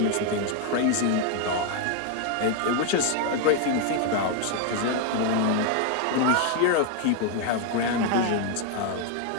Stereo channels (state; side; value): different; both; correlation 0.01